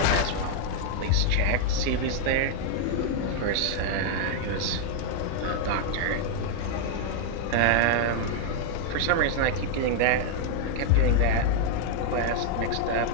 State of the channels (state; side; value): different; both; correlation 0.00